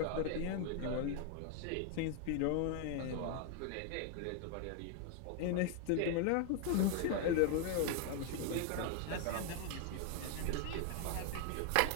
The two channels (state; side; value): different; both; correlation 0.00